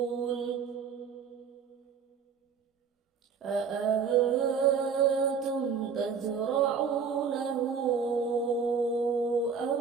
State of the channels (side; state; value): left; quieter; 6.1 dB